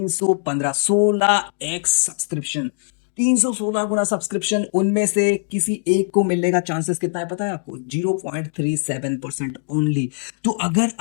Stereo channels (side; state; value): right; silent; digital silence